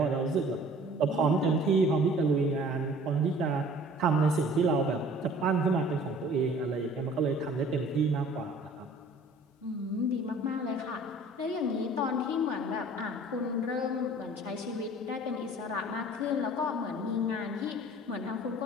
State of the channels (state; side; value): normal; both; correlation 0.49